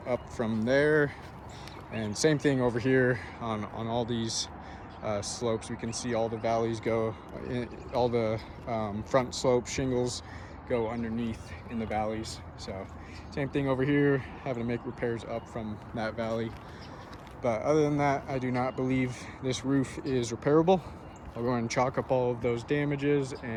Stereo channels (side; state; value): both; identical; correlation 1.00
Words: up from there. And same thing over here on all these slopes. We can see all the valleys go, all the front slope shingles go underneath in the valleys. So same thing over here, having to make repairs up from that valley. But other than that, I do not believe this roof is repairable. I'll go and chalk up all of those damages